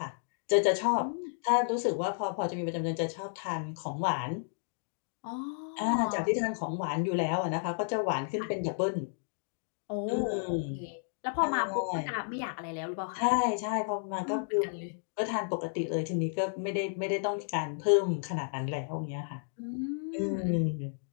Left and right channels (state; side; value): silent; right; digital silence